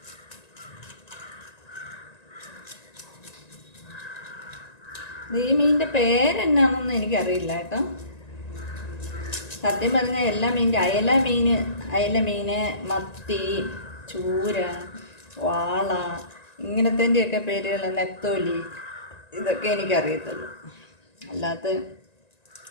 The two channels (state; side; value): late; right; 1.9 ms